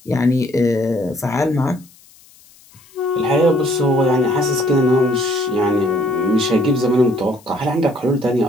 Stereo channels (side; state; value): left; noise; hiss, 27 dB below the sound